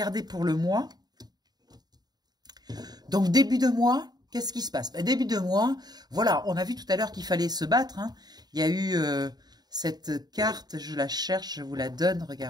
pour le mois. Donc, début de mois, qu'est-ce qui se passe? Ben, début de mois, voilà, on a vu tout à l'heure qu'il fallait se battre. Hein. Il y a eu... cette carte, je la cherche, je vous la donne,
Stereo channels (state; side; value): late; left; 0.20 ms